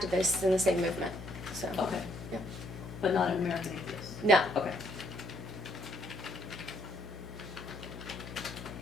in the same movement, so. Okay. Yeah. But not an American Atheist? No. Okay.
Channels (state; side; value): noise; left; hum, 11 dB below the sound